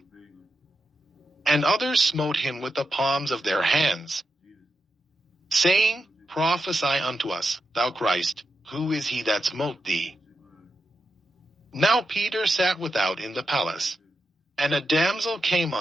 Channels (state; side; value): normal; both; correlation 0.87